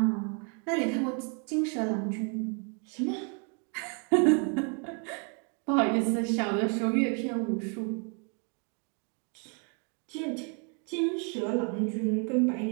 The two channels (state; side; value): quieter; left; 38.1 dB